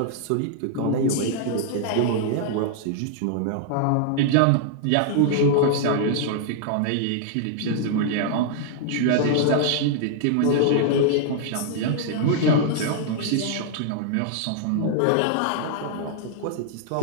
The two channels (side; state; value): both; different; correlation 0.00